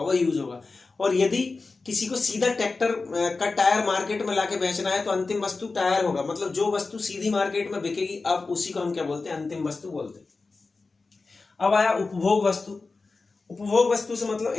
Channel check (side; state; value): right; quieter; 3.9 dB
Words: वो यूज होगा। और यदि किसी को सीधा ट्रैक्टर का टायर मार्केट में लाके बेचना है तो अंतिम वस्तु टायर होगा, मतलब जो वस्तु सीधी मार्केट में बिकेगी अब उसी को हम क्या बोलते हैं? अंतिम वस्तु बोलते हैं। अब आया उपभोग वस्तु। उपभोग वस्तु से मतलब